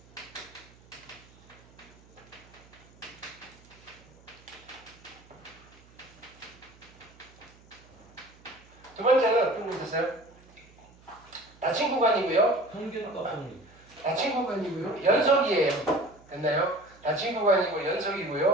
두 번째는 어떤 거 있었어요? 닫힌 구간이고요. 평균값 정리. 닫힌 구간이고요. 연속이에요. 됐나요? 닫힌 구간이고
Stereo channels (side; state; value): right; noise; hum, 26 dB below the sound